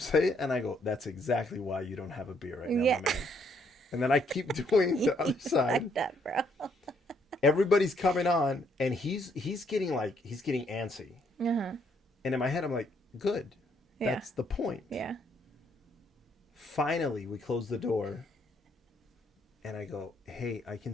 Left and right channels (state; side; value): normal; both; correlation 0.70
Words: it, and I go, "That's exactly why you don't have a beer right now, my man." And then I keep doing the other side. Like that, bro. Everybody's coming on, and he's getting antsy. And in my head, I'm like, "Good, that's the point." Yeah. Finally, we close the door, and I go, "Hey, I can